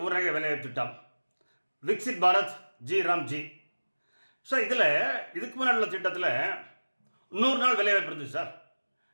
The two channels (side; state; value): both; inverted; correlation -1.00